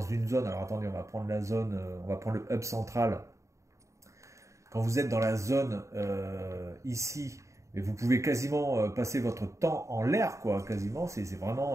une zone, alors attendez, on va prendre la zone, on va prendre le hub central. Quand vous êtes dans la zone ici, et vous pouvez quasiment passer votre temps en l'air, quoi, quasiment. C'est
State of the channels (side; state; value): left; late; 0.15 ms